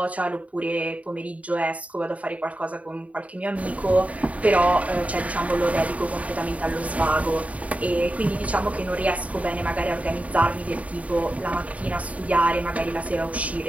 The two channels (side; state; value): left; late; 0.068 ms